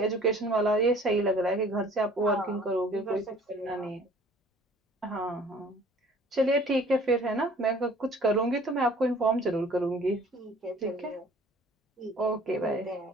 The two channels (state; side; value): normal; both; correlation 0.52